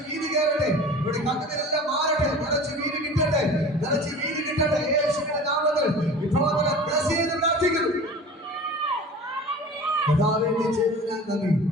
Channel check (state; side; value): normal; both; correlation 0.39